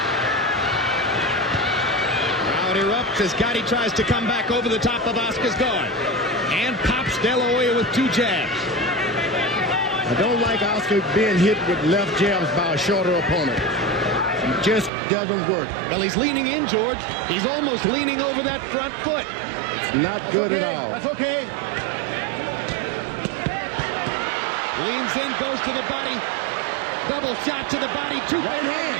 Crowd erupts as Gatti tries to come back over the top of Oscar's guard. And pops De La Hoya with 2 jabs. I don't like Oscar being hit with left jabs by a shorter opponent. It just doesn't work. Well, he's leaning in, George. He's almost leaning over that front foot. It's not good at all. That's okay. Leans in, goes to the body. Double shot to the body. 2 right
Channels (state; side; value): drops out; left; at 14.9 s